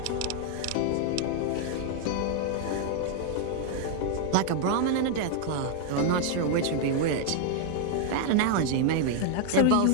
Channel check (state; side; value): different; both; correlation 0.00